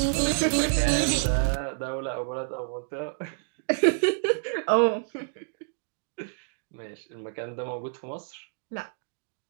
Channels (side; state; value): left; silent; digital silence